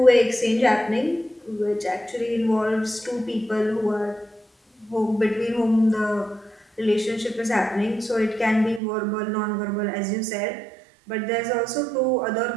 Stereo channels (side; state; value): left; drops out; at 8.8 s